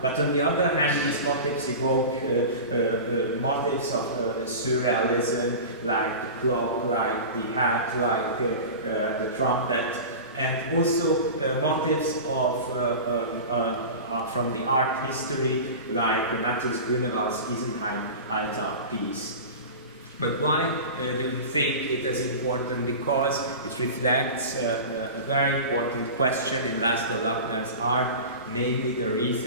But on the other hand, these motifs evoke motifs of surrealism, like the clock, like the hat, like the trumpet, and also motifs of from the art history, like Matthias Grünewald's Isenheim altar piece. But why do you think it is important? Because it reflects a very important question in László Lakner's art, namely the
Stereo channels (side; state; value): both; inverted; correlation -0.31